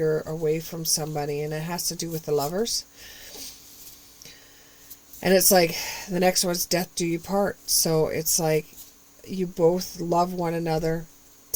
away from somebody, and it has to do with the Lovers. And it's like the next one's Death Do You Part. So it's like you both love one another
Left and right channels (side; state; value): both; identical; correlation 1.00